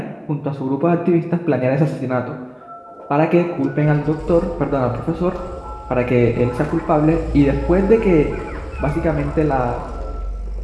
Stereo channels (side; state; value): both; identical; correlation 1.00